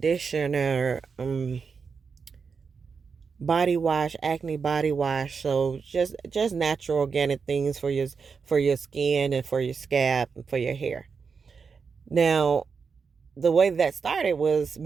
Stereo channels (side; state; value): left; quieter; 5.5 dB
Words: body wash, acne body wash. So just natural organic things for your skin and for your scalp and for your hair. Now, the way that started was